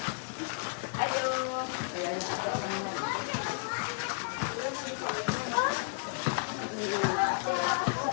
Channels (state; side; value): silent; right; 56 dB below the other